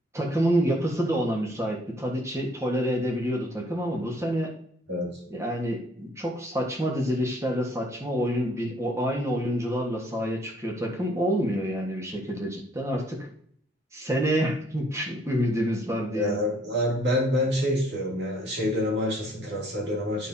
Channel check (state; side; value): normal; both; correlation 0.62